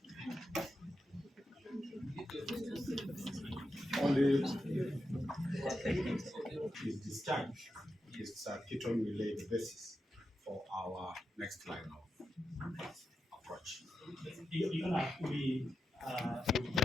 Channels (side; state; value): both; normal; correlation 0.88